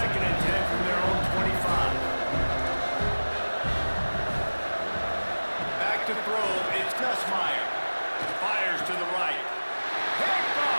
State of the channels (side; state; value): both; inverted; correlation -1.00